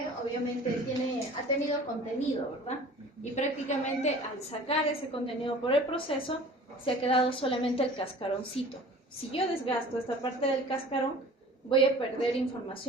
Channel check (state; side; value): normal; both; correlation 0.44